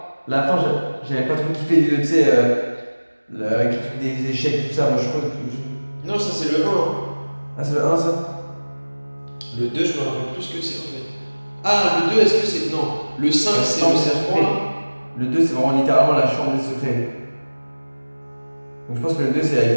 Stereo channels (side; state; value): both; inverted; correlation -1.00